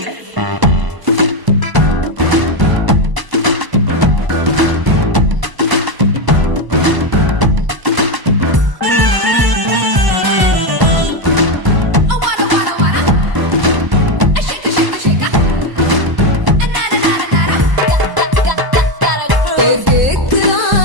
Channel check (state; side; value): late; left; 1.0 ms